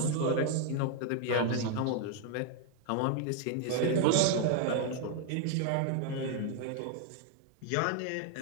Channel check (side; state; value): both; different; correlation 0.01